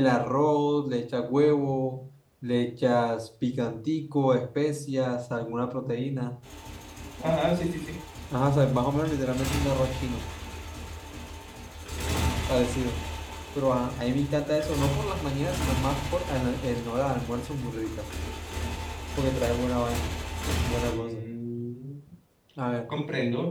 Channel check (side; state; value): both; identical; correlation 1.00